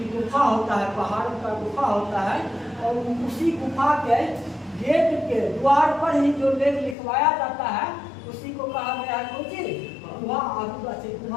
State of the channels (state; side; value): drops out; right; at 7.0 s